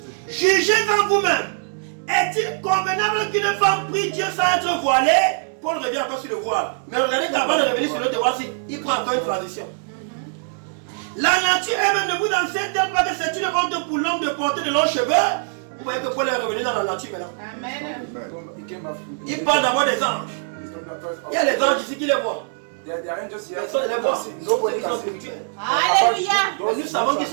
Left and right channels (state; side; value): silent; left; digital silence